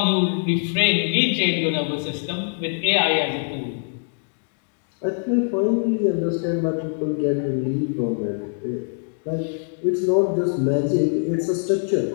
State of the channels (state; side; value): silent; right; digital silence